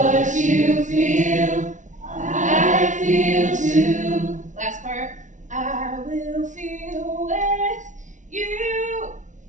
you feel, I feel too. Last part. I will feel with you.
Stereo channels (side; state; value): left; late; 0.36 ms